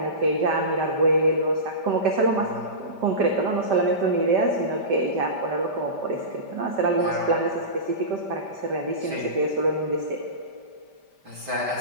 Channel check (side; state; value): left; late; 5.1 ms